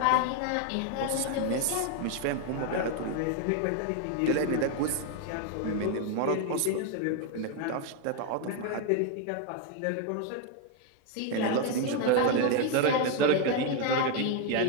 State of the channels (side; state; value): both; different; correlation 0.01